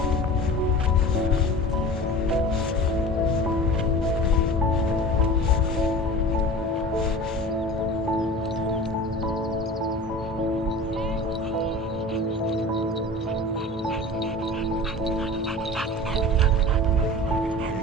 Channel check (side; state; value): both; normal; correlation 0.37